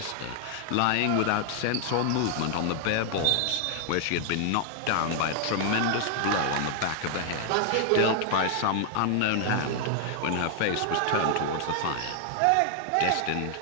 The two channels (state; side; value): different; both; correlation 0.00